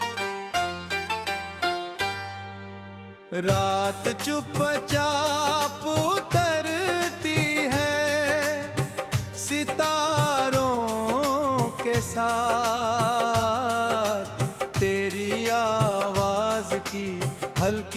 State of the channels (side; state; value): both; identical; correlation 1.00